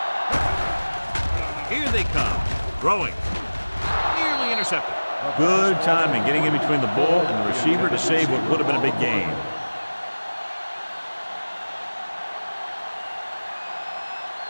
Here they come. Throwing. Nearly intercepted. Good timing getting in between the ball and the receiver to save what would have been a big gain.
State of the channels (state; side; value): inverted; both; correlation -1.00